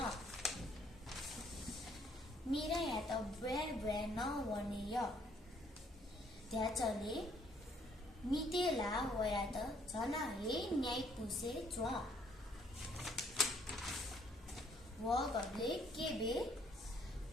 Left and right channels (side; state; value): both; normal; correlation 0.65